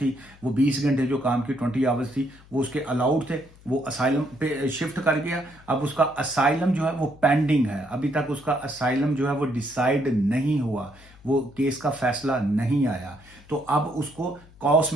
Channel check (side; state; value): left; noise; hum, 24 dB below the sound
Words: वो 20 घंटे जो काम की 20 आवर्स थी, वो उसके अलाउड थे, वो असाइलम पे शिफ्ट कर गया। अब उसका असाइलम जो है वो पेंडिंग है, अभी तक उसका असाइलम जो है वो डिसाइड नहीं हुआ, वो केस का फैसला नहीं आया। तो अब उसको कॉस